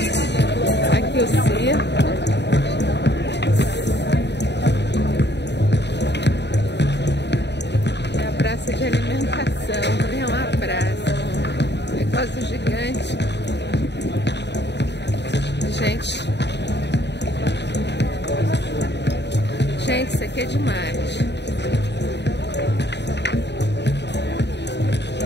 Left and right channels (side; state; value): right; late; 0.50 ms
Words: Aqui o circo. É a praça de alimentação. É uma praça. Um negócio gigante. Gente, isso aqui é demais.